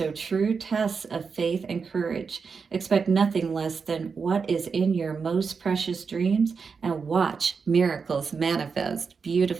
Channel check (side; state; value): left; quieter; 5.4 dB